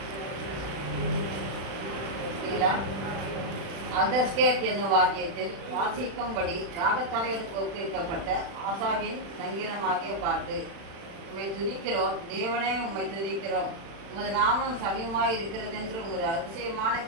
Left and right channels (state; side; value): late; left; 36 ms